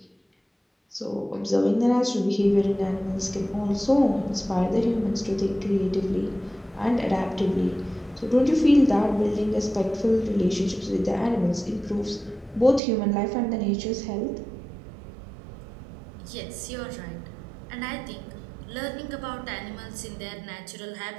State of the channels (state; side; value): drops out; left; at 12.8 s